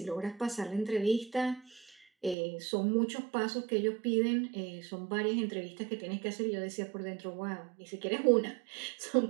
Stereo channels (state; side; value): drops out; left; at 2.4 s